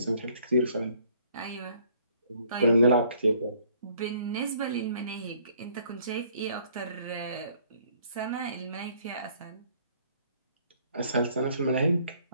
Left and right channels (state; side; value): inverted; both; correlation -0.62